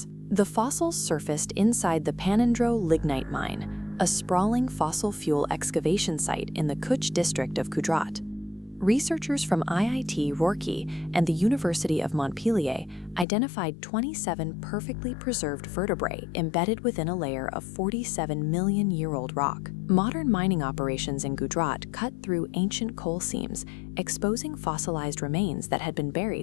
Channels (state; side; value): drops out; right; at 13.2 s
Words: The fossils surfaced inside the Panandro lignite mine, a sprawling fossil fuel excavation site in the Kutch district of Gujarat. Researchers from IIT Roorkee and the University of Montpellier identified 27 perfectly preserved vertebrae embedded within a layer of 47-million-year-old rock. Modern mining operations in Gujarat cut through ancient coal seams, exposing fossilized remains that had been